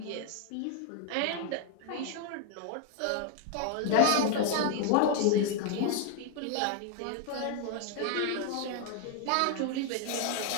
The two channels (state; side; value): different; both; correlation 0.00